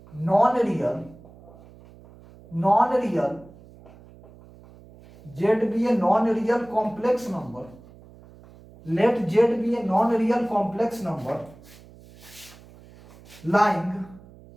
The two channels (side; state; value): right; noise; hum, 22 dB below the sound